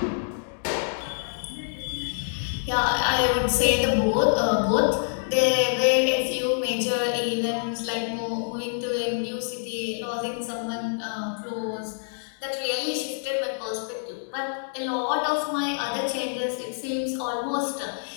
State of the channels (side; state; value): right; silent; digital silence